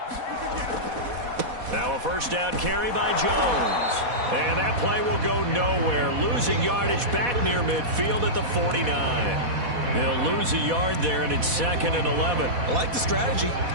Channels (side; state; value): left; late; 4.1 ms